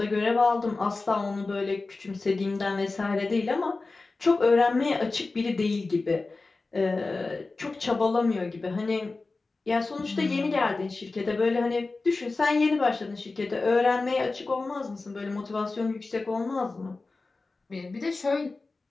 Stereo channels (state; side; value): quieter; right; 3.6 dB